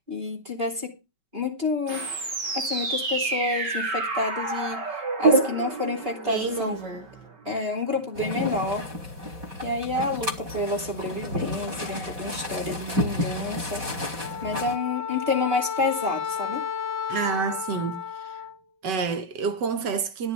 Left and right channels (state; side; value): late; left; 5.3 ms